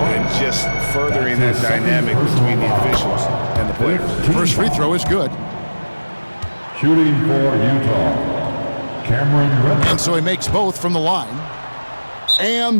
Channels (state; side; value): inverted; both; correlation -1.00